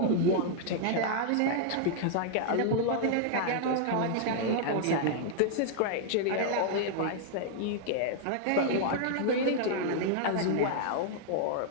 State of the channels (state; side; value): different; both; correlation -0.01